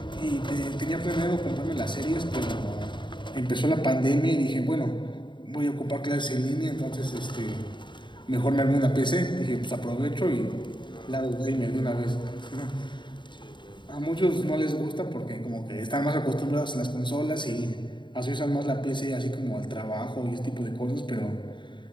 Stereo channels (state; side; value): late; right; 0.23 ms